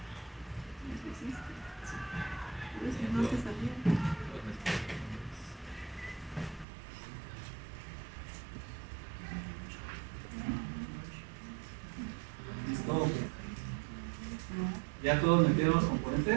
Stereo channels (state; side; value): drops out; left; at 6.7 s